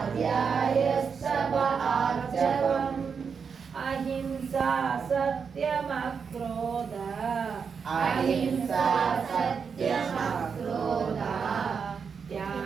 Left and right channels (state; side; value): quieter; left; 6.1 dB